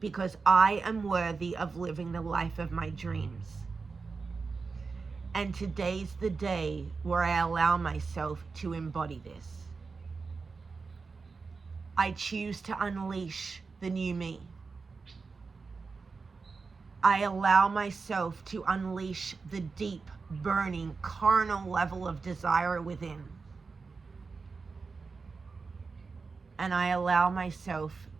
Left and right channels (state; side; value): quieter; left; 4.6 dB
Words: Because I am worthy of living the life of my dreams. And today's the day where I allow myself to embody this. I choose to unleash the new me. I allow myself to unleash the deep, burning, carnal level of desire within. And I allow myself